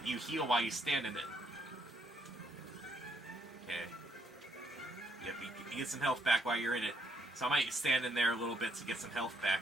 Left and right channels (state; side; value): normal; both; correlation 0.72